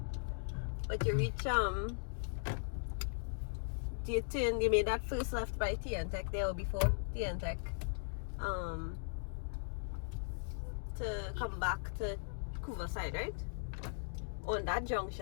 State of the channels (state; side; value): silent; right; digital silence